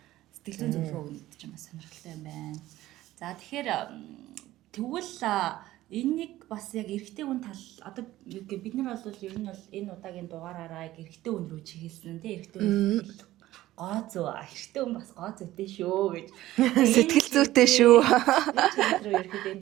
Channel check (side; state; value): left; quieter; 15.5 dB